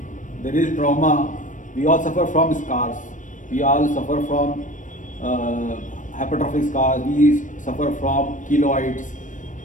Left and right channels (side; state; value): right; late; 0.37 ms